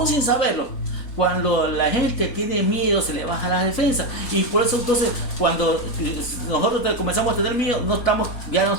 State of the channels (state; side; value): late; right; 4.1 ms